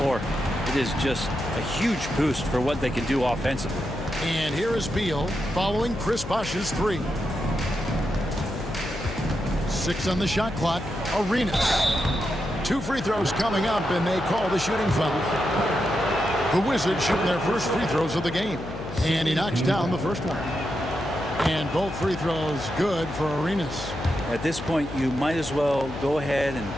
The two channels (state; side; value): noise; left; hum, 10 dB below the sound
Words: it is just a huge boost for what they can do offensively. And here is Beal following Chris Bosch's 3. 6 on the shot clock. Arenas. 2 free throws coming up, and they call the shooting foul. The Wizards shooting their first free throws of the game. And he knocks down the first one. And both free throws good for Arenas. At this point, you might as well go ahead and